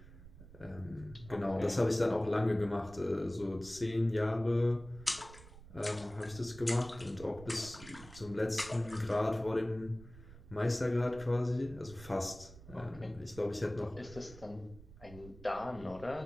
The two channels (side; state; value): right; noise; rumble, 17 dB below the sound